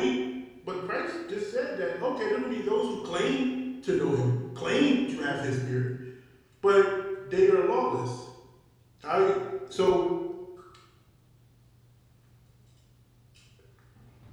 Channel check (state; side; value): identical; both; correlation 1.00